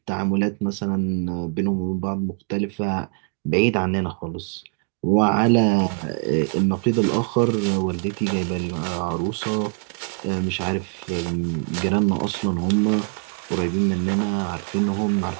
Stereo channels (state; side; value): quieter; left; 39.5 dB